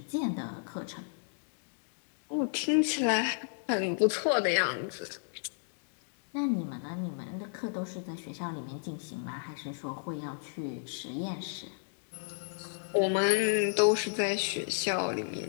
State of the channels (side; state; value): right; silent; digital silence